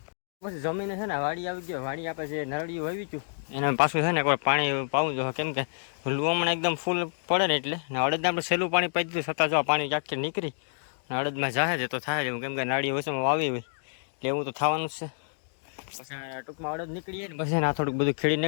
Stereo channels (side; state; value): right; silent; digital silence